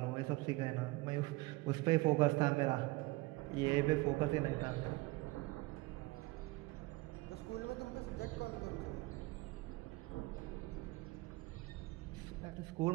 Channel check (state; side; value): quieter; left; 22.0 dB